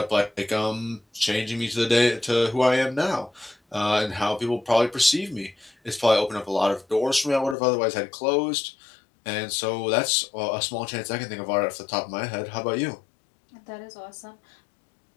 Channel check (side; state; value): right; drops out; at 7.6 s